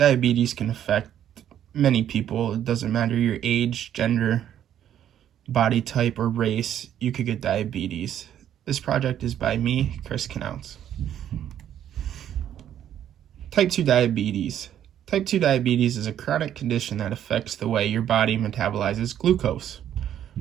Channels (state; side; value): quieter; left; 10.5 dB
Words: can affect many people. It doesn't matter your age, gender, body type, or race. You could get diabetes. This project is by me, Chris Knautz. Type 2 diabetes. Type 2 diabetes is a chronic condition that affects the way your body metabolizes glucose,